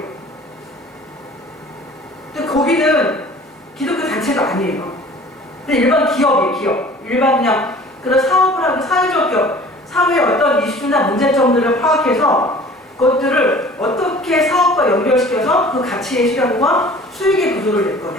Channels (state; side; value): normal; both; correlation 0.47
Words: 근데 거기는 기독교 단체가 아니에요. 근데 일반 기업이에요. 기업, 일반 그냥 그런 사업을 하고 사회적 기업, 사회의 어떤 이슈나 문제점들을 파악해서 그것들을 어떻게 사업과 연결시켜서 그 가치의 실현과 수익의 구조를 낼